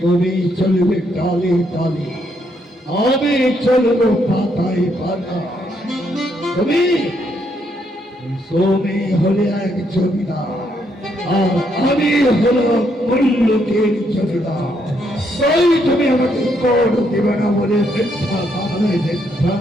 চলবে ডালে ডালে, আমি চলব পাতায় পাতা। তুমি তুমি হলে এক জমিদার আর আমি হলো মূল্যকের জমিদার। তাই তুমি আমাকে কর দেবে না বলে মিথ্যা কামনায়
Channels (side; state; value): both; normal; correlation 0.74